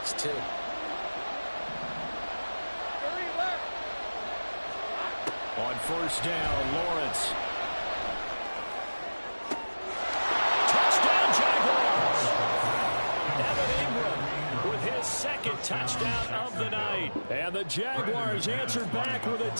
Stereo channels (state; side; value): inverted; both; correlation -1.00